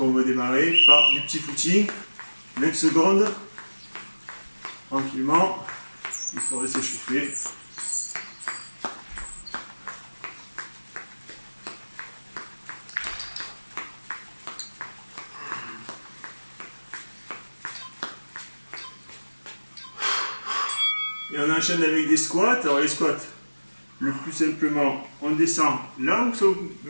on va démarrer par du petit footing. 20 secondes, tranquillement, histoire de s'échauffer. Et on enchaîne avec des squats. Alors les squats, le plus simplement, on descend là où ça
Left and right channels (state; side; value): inverted; both; correlation -1.00